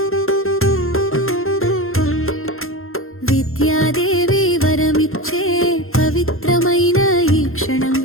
విద్యాదేవి వరమిచ్చే పవిత్రమైన ఈ క్షణం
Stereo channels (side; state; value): right; late; 0.61 ms